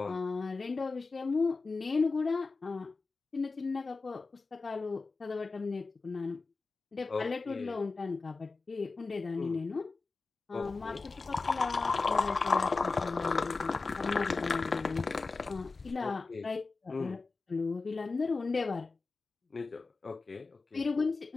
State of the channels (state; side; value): quieter; right; 4.0 dB